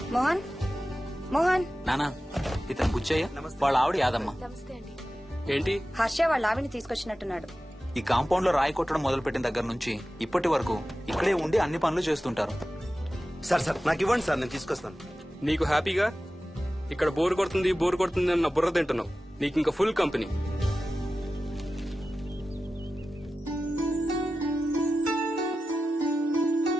మోహన్, మోహన్. నానా, ఇతను బుచ్చయ్య, వాళ్ళ ఆవిడ యాదమ్మ. ఏంటి? హర్ష వాళ్ళ ఆవిని తీసుకొచ్చినట్టున్నాడు. ఈ కాంపౌండ్ లో రాయి కొట్టడం మొదలుపెట్టిన దగ్గర నుంచి ఇప్పటి వరకు ఇక్కడే ఉండి అన్ని పనులు చేస్తుంటారు. సార్ నాకు ఇవ్వండి సార్, నేను తీసుకొస్తాను. నీకు హ్యాపీగా ఇక్కడ బోర్ కొడుతుంది అన్న బుర్ర తింటున్నావు. నీకు ఇంకా ఫుల్ కంపెనీ.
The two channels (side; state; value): both; normal; correlation 0.94